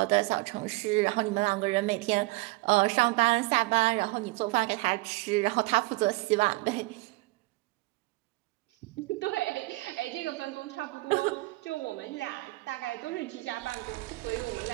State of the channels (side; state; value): left; quieter; 22.2 dB